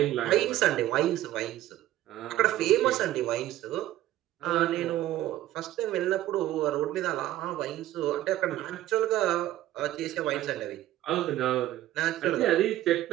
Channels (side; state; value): left; quieter; 14.2 dB